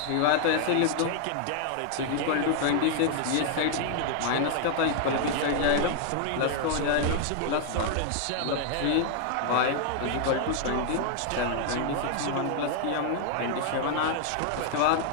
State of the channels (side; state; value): both; different; correlation 0.00